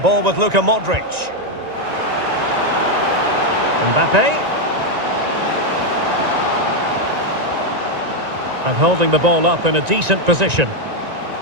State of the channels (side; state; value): left; late; 1.9 ms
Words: ball with Luka Modric. Mbappé. And holding the ball up in a decent position.